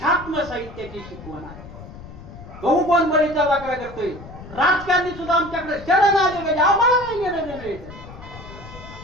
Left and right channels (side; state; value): left; noise; rumble, 15 dB below the sound